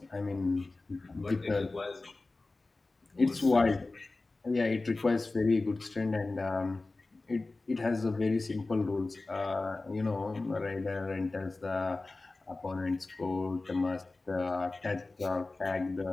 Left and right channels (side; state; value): right; quieter; 3.3 dB